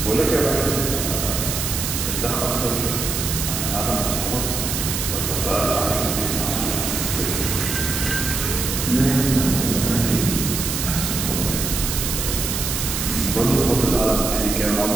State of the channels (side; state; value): right; noise; hiss, 2 dB below the sound